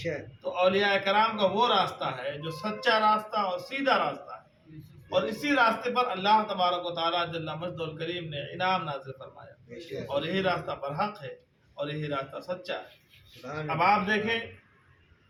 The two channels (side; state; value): both; identical; correlation 1.00